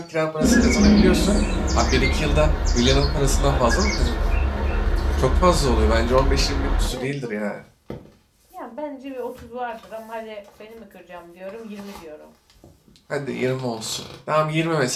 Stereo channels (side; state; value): both; identical; correlation 1.00